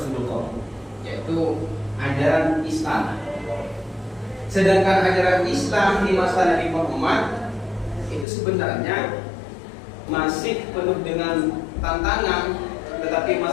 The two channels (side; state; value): right; drops out; at 8.2 s